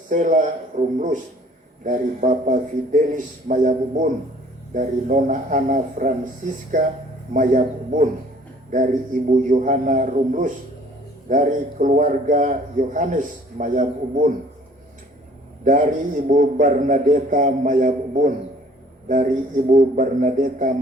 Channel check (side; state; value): both; normal; correlation 0.55